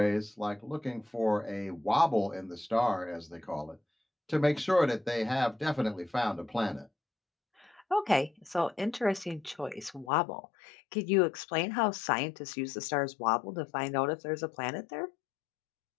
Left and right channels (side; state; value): right; drops out; at 10.1 s